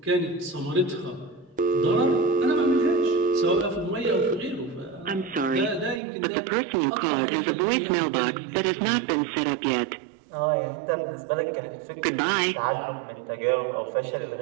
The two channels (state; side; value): drops out; left; at 6.0 s